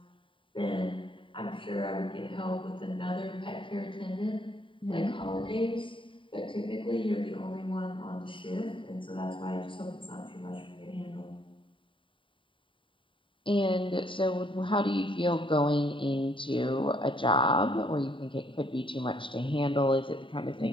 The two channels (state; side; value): late; right; 0.25 ms